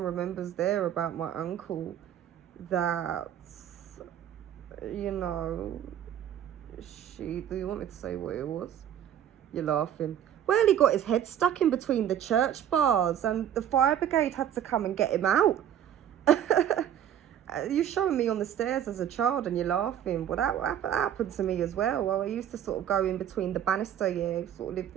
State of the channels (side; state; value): left; quieter; 10.2 dB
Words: remembers there about my uncle that, do you want me to say what it was? You're laughing. Well, he got his head stuck in between the church bars and the fire brigade had to come and get him out. You're showing me on the stairs as a child and you're laughing. Well, that happened to me as well. I used to sort of go in between the banister, yeah, sort of lived